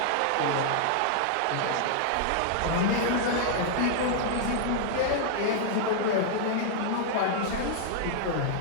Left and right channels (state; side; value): different; both; correlation -0.01